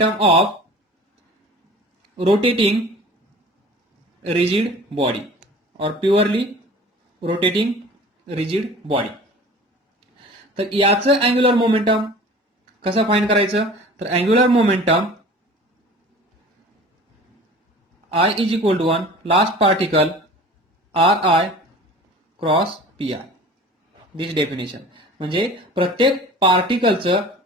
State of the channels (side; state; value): both; normal; correlation 0.42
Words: of rotating rigid body और प्युअरली रोटेटिंग रिजिड बॉडी. तर याचं अँग्युलर मोमेंटम कसं फाइंड करायचं? तर angular momentum I is equal to 1 last particle Ri cross Pi. This definition. म्हणजे प्रत्येक पार्टिकलचं